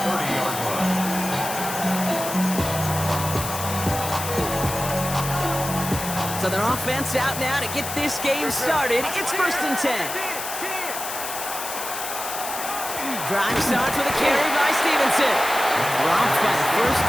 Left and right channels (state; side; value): noise; left; hiss, 6 dB below the sound